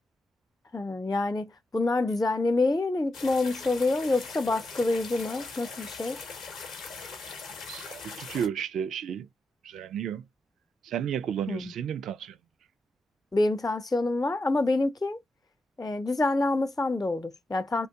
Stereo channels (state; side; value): normal; both; correlation 0.86